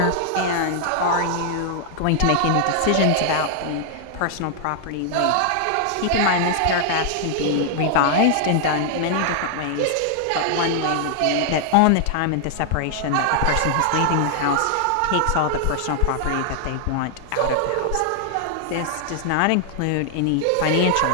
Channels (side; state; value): both; different; correlation 0.00